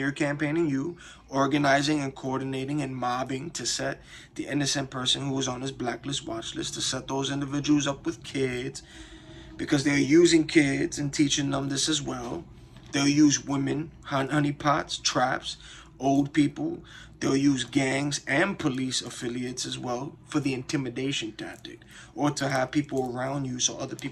campaigning you, organizing and coordinating and mobbing to set the innocent person who was on his blacklist watch list, to set those individuals up with kids, because they're using kids and teaching them this as well. They'll use women, honeypots, traps, old people. They'll use gangs and police affiliates as well for the intimidation tactic, or to have people around you so other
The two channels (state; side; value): identical; both; correlation 1.00